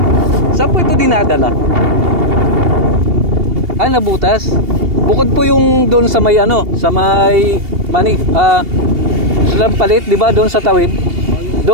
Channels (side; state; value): left; late; 2.8 ms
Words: Saan po ito dinadala? Nabutas. Bukod po yung doon sa may sa may palit, di ba? Doon sa tawid.